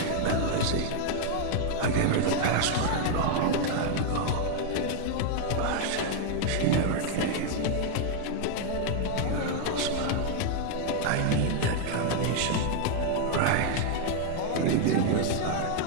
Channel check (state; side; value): different; both; correlation 0.00